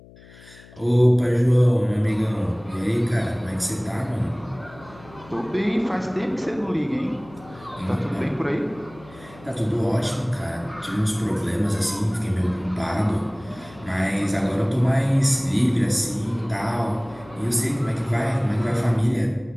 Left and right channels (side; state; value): left; noise; hum, 22 dB below the sound